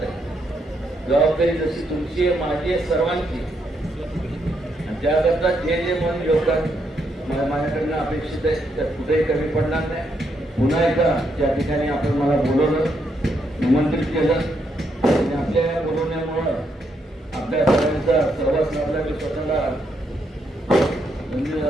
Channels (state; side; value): normal; both; correlation 0.77